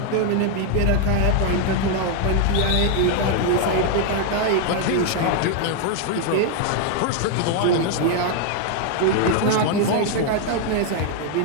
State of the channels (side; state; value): both; different; correlation 0.00